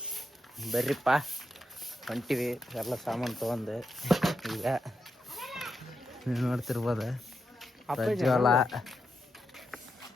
ಬರ್ರಿಪ್ಪ ಹೊಂಟಿವಿ ಎಲ್ಲ ಸಾಮಾನು ತೊಗೊಂಡು. ಈಗ ನೀವು ನೋಡ್ತಿರ್ಬೋದು ಪ್ರಜ್ವಲ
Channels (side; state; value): both; normal; correlation 0.84